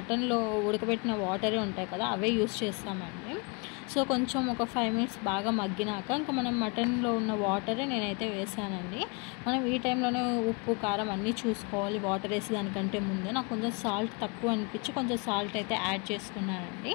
ఉడకబెట్టిన వాటరే ఉంటాయి కదా, అవే యూస్ చేస్తామండి. సో కొంచెం ఒక 5 మినిట్స్ బాగా మగ్గినాక ఇంకా మనం మటన్లో ఉన్న వాటరే నేనైతే వేసానండి. మనం ఈ టైంలోనే ఉప్పు కారం అన్నీ చూసుకోవాలి వాటర్ వేసి దానికంటే ముందే. నాకు కొంచెం సాల్ట్ తక్కువ అనిపించి కొంచెం సాల్ట్ అయితే యాడ్ చేసుకున్నానండి.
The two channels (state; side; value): quieter; right; 31.5 dB